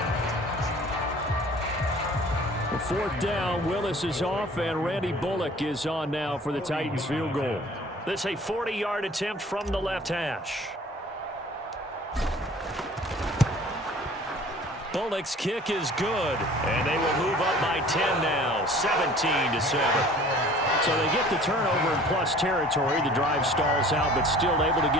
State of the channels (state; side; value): normal; both; correlation 0.49